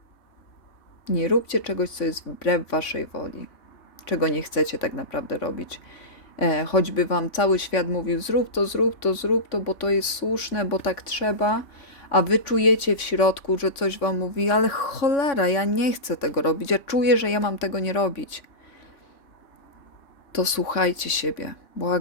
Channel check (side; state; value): right; late; 3.5 ms